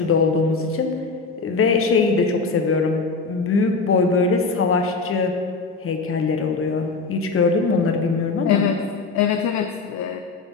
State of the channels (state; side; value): quieter; right; 4.2 dB